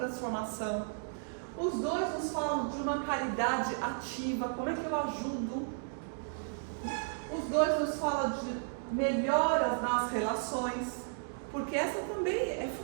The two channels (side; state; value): left; silent; digital silence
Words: Os dois nos falam de uma caridade ativa, como é que eu ajudo. Os dois nos falam de melhoras nas relações, porque essa também é